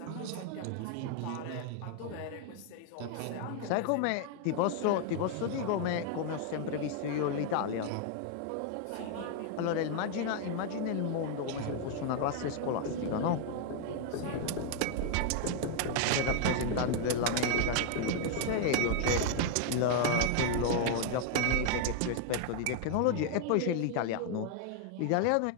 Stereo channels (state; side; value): different; both; correlation 0.00